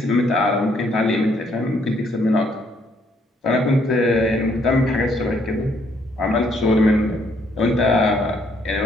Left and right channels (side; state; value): both; normal; correlation 0.68